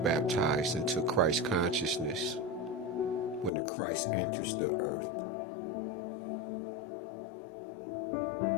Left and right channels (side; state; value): right; drops out; at 3.5 s